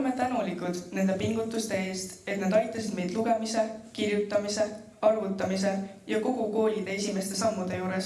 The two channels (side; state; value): both; identical; correlation 1.00